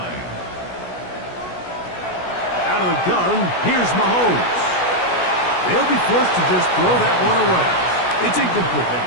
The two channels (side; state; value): right; late; 16 ms